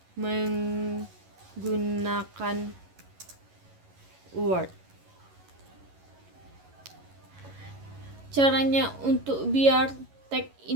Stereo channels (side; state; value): left; late; 11 ms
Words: menggunakan Word. Caranya untuk biar tag